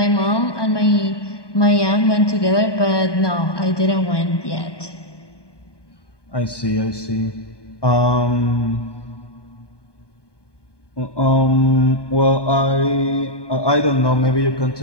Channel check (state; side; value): late; right; 1.2 ms